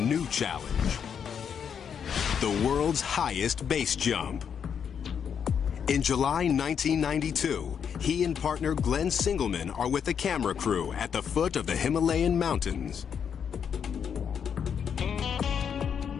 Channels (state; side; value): quieter; right; 7.5 dB